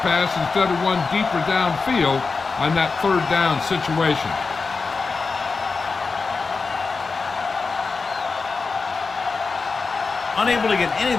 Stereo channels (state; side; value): quieter; right; 4.5 dB